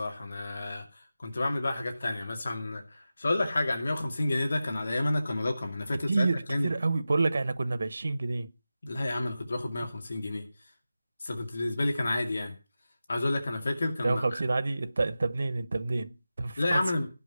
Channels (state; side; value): inverted; both; correlation -0.93